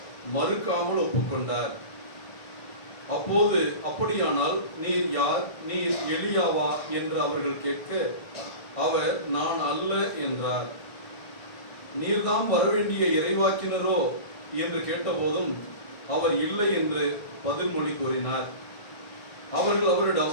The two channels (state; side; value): late; right; 1.6 ms